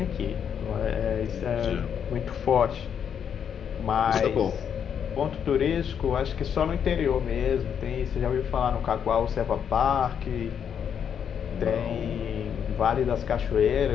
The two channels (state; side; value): quieter; right; 8.0 dB